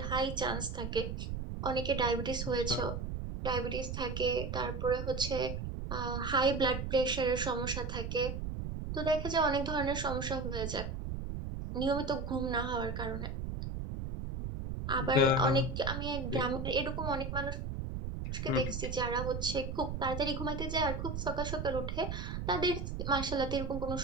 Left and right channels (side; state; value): right; noise; rumble, 4 dB below the sound